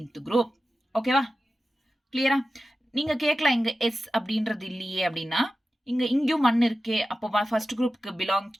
group. ஓகேவா? கிளியரா? நீங்க கேட்கலாம் இங்க S அப்படின்றது இல்லையே அப்படின்னா, இங்கேயும் 1 இருக்கே, அப்போ ஃபர்ஸ்ட் குரூப்க்கு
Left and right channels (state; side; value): normal; both; correlation 0.94